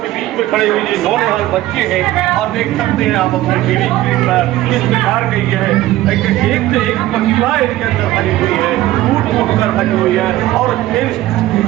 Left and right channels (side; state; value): left; quieter; 15.5 dB